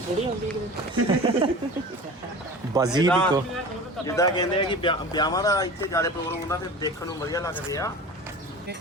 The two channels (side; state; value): both; normal; correlation 0.36